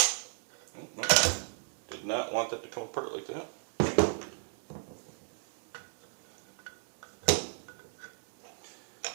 Oh, no. Did not want that to come apart like that.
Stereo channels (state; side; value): silent; left; 55 dB below the other